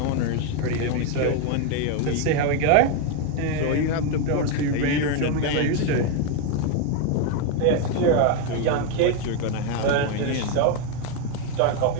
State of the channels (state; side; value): different; both; correlation 0.01